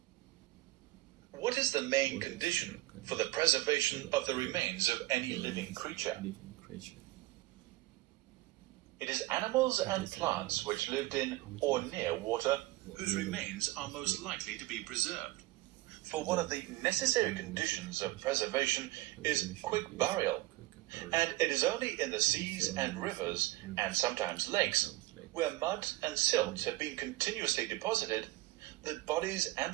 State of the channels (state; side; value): quieter; left; 19.1 dB